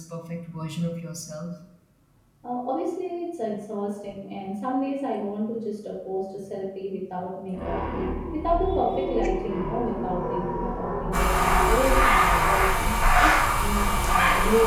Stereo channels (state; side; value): identical; both; correlation 1.00